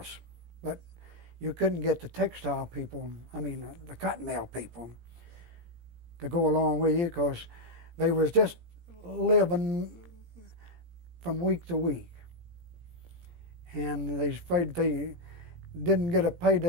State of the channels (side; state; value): left; late; 17 ms